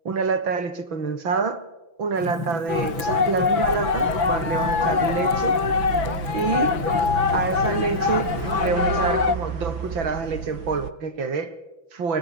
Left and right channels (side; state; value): left; late; 6.0 ms